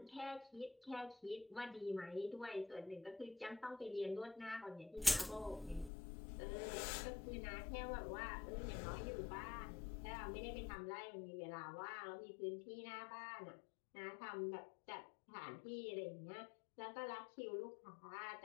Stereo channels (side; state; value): right; drops out; at 5.9 s